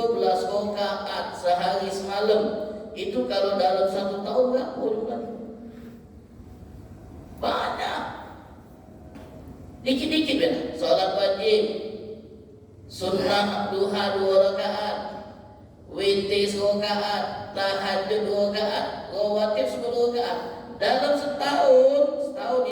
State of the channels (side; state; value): both; identical; correlation 1.00